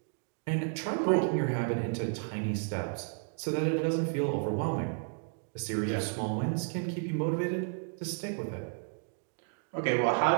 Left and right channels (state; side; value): silent; left; 56 dB below the other